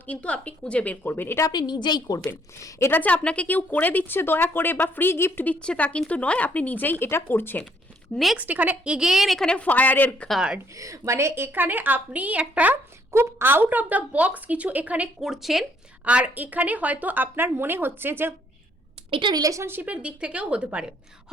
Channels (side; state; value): both; normal; correlation 0.67